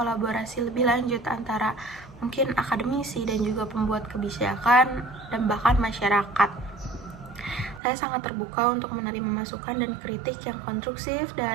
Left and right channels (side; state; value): left; drops out; at 7.8 s